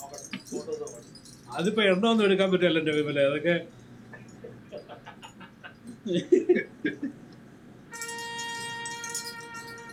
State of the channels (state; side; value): identical; both; correlation 1.00